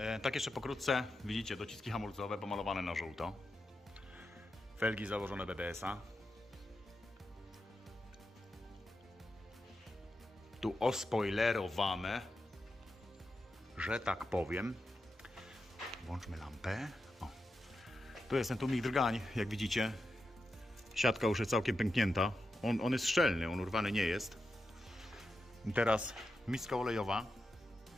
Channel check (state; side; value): normal; both; correlation 0.88